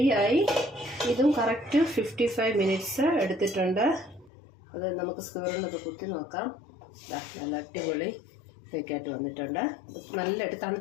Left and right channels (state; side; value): drops out; right; at 4.3 s